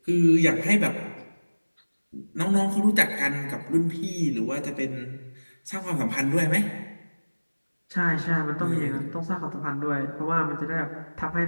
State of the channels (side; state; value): both; inverted; correlation -1.00